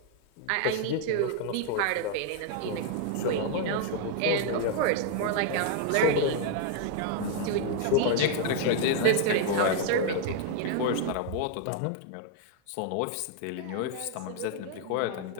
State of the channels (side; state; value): both; different; correlation 0.00